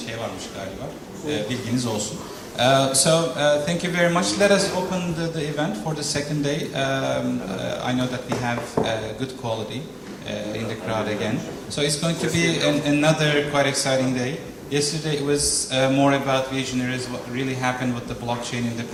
varmış galiba. Bilginiz olsun. Thank you very much. Let us open the event for the second day. I know that we have good quality in the crowd again. So it's going to be another quite exciting day. Yesterday it was more about visionaries, what really happened with the blockchain in the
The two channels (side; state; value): both; identical; correlation 1.00